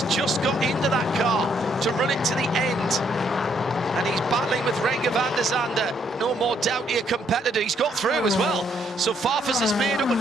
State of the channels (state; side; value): normal; both; correlation 0.71